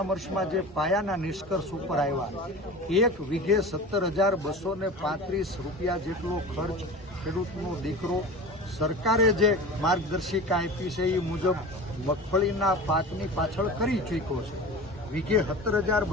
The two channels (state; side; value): normal; both; correlation 0.34